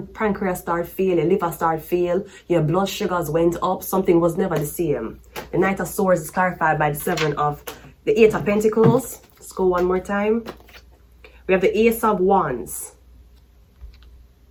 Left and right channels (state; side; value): identical; both; correlation 1.00